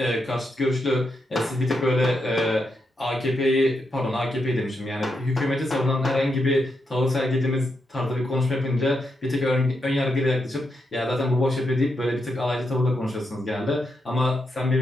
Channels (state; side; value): normal; both; correlation 0.83